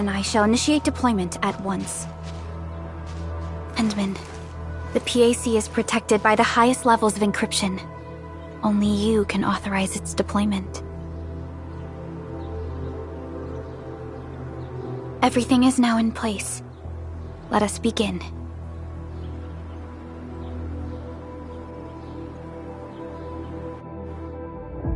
I shall initiate deployment at once. Endman, the PAC is protected by the highest levels of encryption. Only you can authorize its deployment. Everything is now in place. Let us begin.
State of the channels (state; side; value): identical; both; correlation 1.00